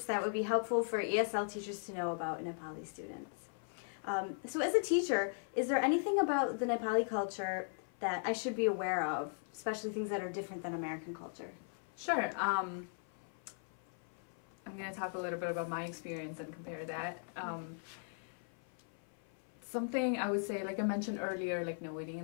that would be helpful for ESL teachers to know about Nepali students. So as a teacher, is there anything about the Nepali culture that I should be aware of, especially things that are different than American culture? Sure. I'm going to talk a little bit about my experience and compare that. Something I would say, like I mentioned earlier, like no waiting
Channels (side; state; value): right; silent; 53 dB below the other